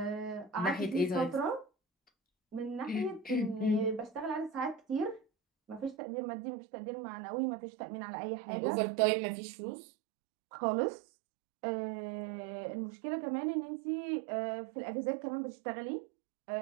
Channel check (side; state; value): left; drops out; at 6.0 s